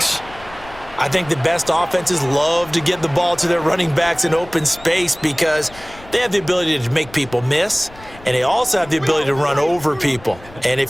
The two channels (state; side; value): noise; left; rumble, 20 dB below the sound